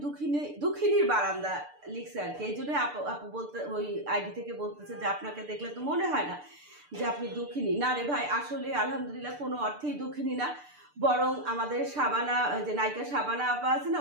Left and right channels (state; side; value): late; left; 6.8 ms